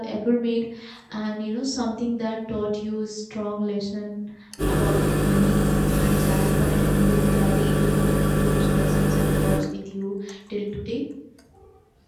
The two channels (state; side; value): identical; both; correlation 1.00